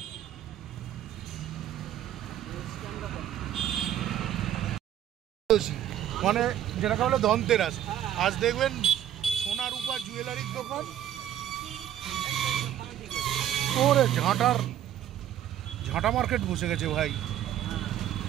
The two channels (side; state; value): left; quieter; 11.2 dB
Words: মানে যেটাকে বলে ধনতেরাস, আজ দেখবেন সোনা রূপা জুয়েলারির দোকান, ওরে ঝাঁটা মার্কেট বসে গেছে ভাই।